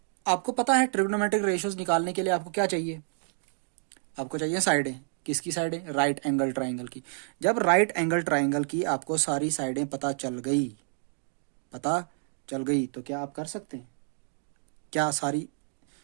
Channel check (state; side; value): silent; left; digital silence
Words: आपको पता है ट्रिग्नोमेट्रिक रेशियोज निकालने के लिए आपको क्या चाहिए, आपको चाहिए साइडें। किसकी साइडें, राइट एंगल ट्राइंगल की। जब राइट एंगल ट्राइंगल की आपको सारी साइडें पता चल गई तो क्या आप कर सकते हैं, क्या सारी